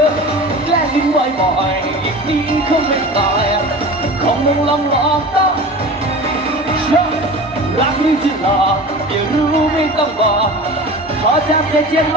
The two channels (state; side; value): normal; both; correlation 0.35